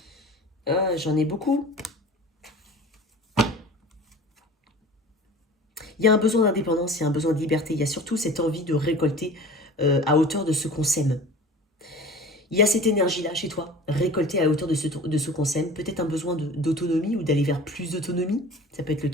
J'en ai beaucoup. Il y a un besoin d'indépendance, il y a un besoin de liberté. Il y a surtout cette envie de récolter à hauteur de ce qu'on sème. Il y a cette énergie-là chez toi, récoltée à hauteur de ce qu'on sème. Peut-être un besoin d'autonomie ou d'aller vers plus d'autonomie. Ça peut être le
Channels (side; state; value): both; normal; correlation 0.40